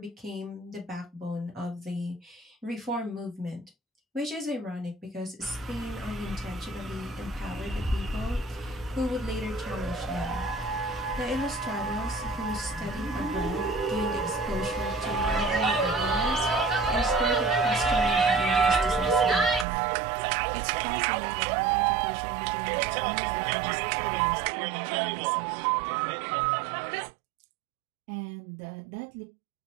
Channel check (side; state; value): left; drops out; at 19.7 s